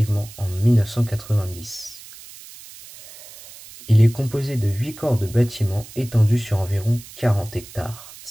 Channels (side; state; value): right; noise; hiss, 18 dB below the sound